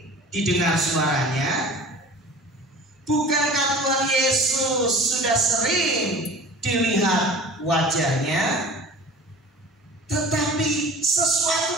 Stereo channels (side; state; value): both; normal; correlation 0.42